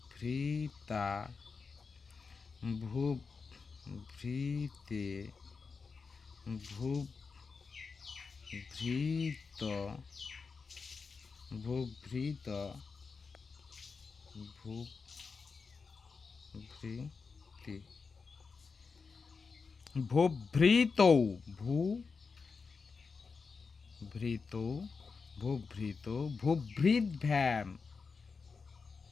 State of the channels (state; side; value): quieter; right; 4.9 dB